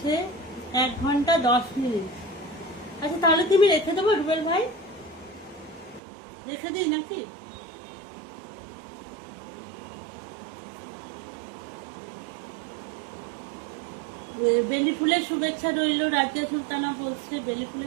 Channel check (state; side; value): drops out; left; at 6.0 s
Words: 1 ঘন্টা 10 মিনিট। আচ্ছা তাহলে কি আমি রেখে দেবো রুবেল ভাই? রেখে দিই নাকি? বেলি ফুলের শুভেচ্ছা রইল। রাজিয়া সুলতানা বলছে বেলি